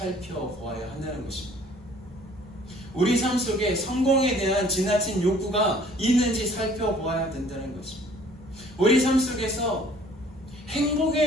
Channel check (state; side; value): normal; both; correlation 0.55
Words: 한다는 것입니다. 우리 삶 속에 성공에 대한 지나친 욕구가 있는지 살펴보아야 된다는 것입니다. 우리 삶 속에서